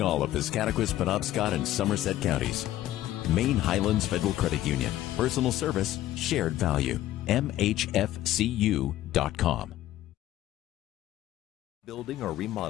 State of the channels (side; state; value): right; quieter; 14.0 dB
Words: all of Piscataquis, Penobscot, and Somerset counties. Maine Highlands Federal Credit Union. Personal service, shared value. MHFCU.com. Building or